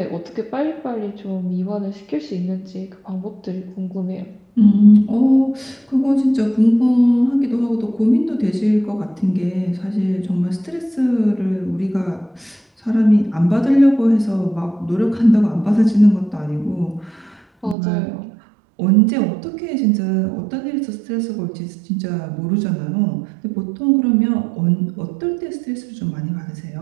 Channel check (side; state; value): left; drops out; at 17.8 s